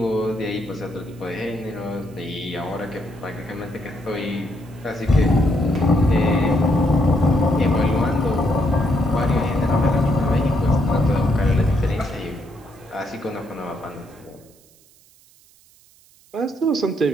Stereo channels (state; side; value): noise; right; hiss, 29 dB below the sound